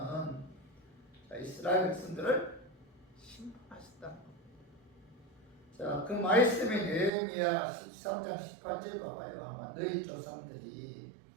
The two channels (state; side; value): drops out; left; at 7.1 s